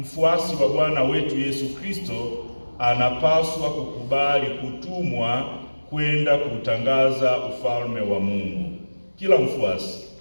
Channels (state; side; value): inverted; both; correlation -1.00